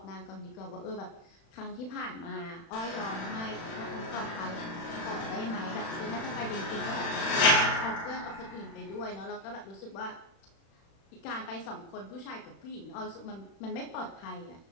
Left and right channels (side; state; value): right; late; 36 ms